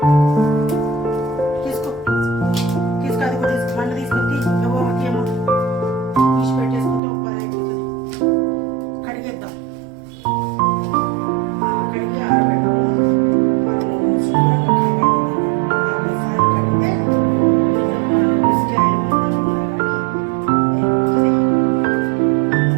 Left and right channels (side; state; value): left; drops out; at 7.0 s